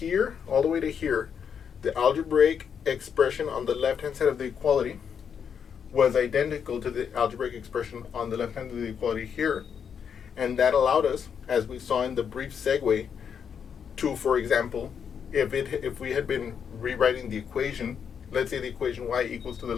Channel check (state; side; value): quieter; right; 7.4 dB